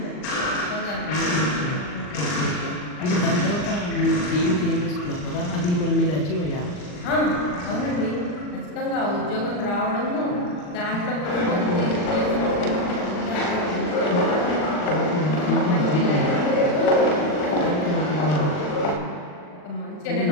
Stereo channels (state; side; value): late; right; 40 ms